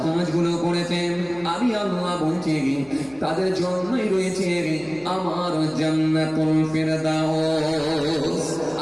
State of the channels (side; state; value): left; noise; hum, 27 dB below the sound